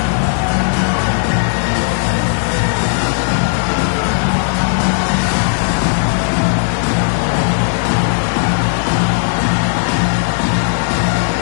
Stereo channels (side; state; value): right; silent; 70 dB below the other